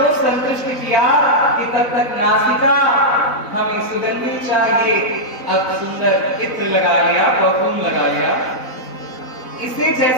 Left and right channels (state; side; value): late; right; 4.0 ms